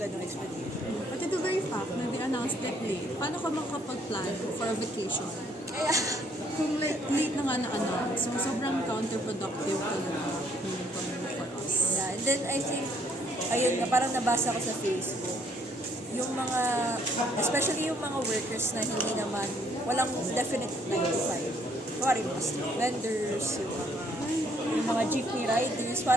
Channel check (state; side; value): normal; both; correlation 0.66